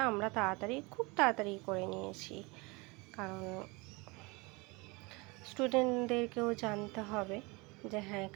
আমরা খুব তাড়াতাড়ি করে নিয়েছি। কারণ স্টুডেন্টদেরকেও জানতে হবে যে হ্যাঁ,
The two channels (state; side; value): quieter; left; 26.4 dB